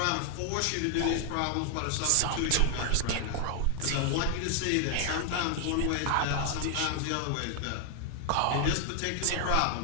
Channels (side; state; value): both; different; correlation 0.00